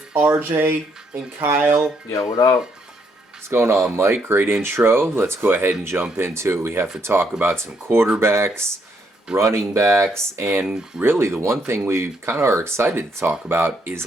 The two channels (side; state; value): both; normal; correlation 0.73